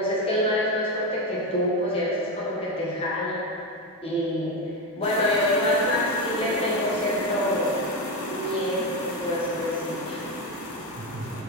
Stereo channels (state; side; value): normal; both; correlation 0.13